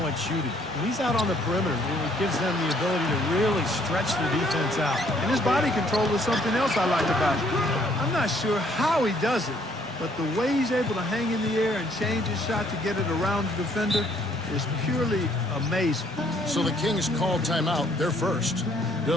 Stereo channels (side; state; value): both; normal; correlation 0.65